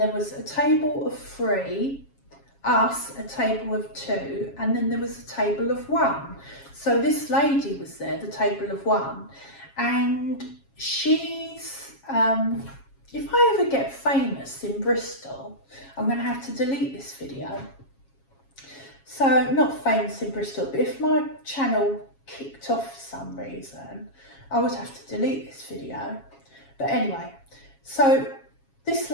was a table of 3, us, a table of 2, and then there was a table of 1. So this lady was there, the table of 1, and she's, if I ever get famous in Bristol, I'm going to have to delete this video. So, not famous in Bristol, but if my channel kicked off for some reason, I would have to delete this video. But anyway, so this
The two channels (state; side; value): late; right; 7.3 ms